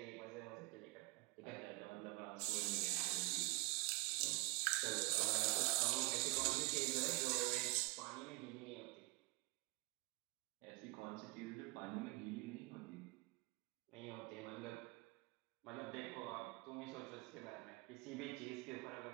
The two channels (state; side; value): quieter; left; 26.1 dB